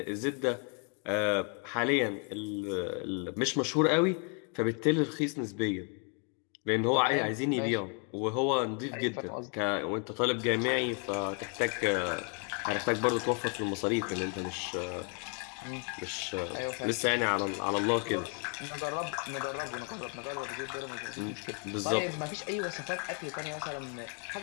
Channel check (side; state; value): right; quieter; 37.4 dB